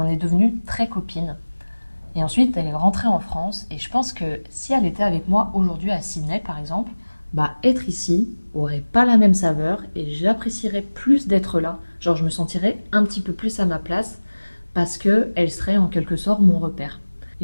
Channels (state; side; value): inverted; both; correlation -1.00